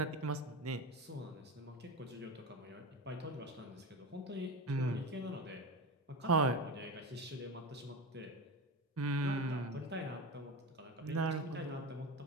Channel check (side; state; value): both; normal; correlation 0.24